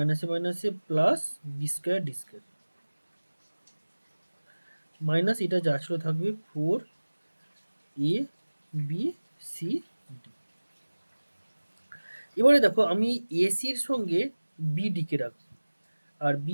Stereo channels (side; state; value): both; inverted; correlation -1.00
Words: মাইনাসে plus B square D square minus এটা যা ছিল থাকবে 4abcd। এবারে দেখো আমি এসির সঙ্গে বিডিকে রাখবো আর